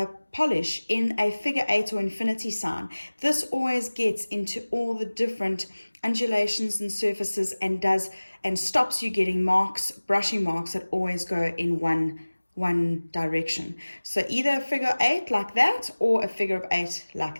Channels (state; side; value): inverted; both; correlation -1.00